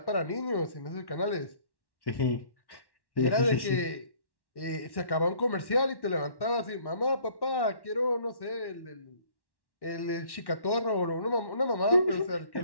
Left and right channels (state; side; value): late; right; 1.1 ms